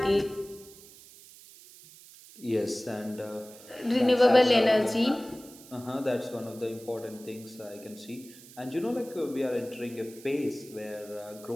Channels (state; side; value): noise; right; hiss, 20 dB below the sound